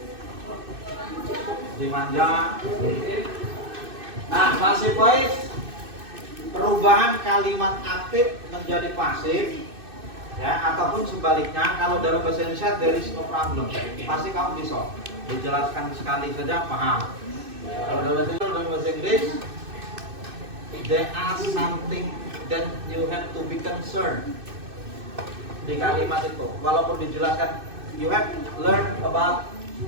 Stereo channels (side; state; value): left; late; 2.6 ms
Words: Dimanja. Nah, passive voice, perubahan kalimat aktif menjadi pasif, ya, ataupun sebaliknya. Kalau dalam bahasa Indonesia there is no problem, pasti kamu bisa dijelaskan sekali saja paham. Kalau dalam bahasa Inggris there are something that you have to be concerned. Di kalimat itu walaupun dijelaskan you have learn about